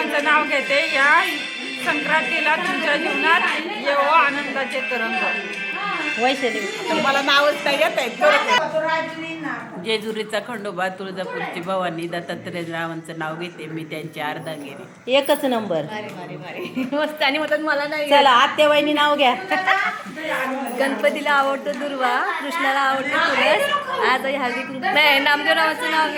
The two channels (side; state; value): both; identical; correlation 1.00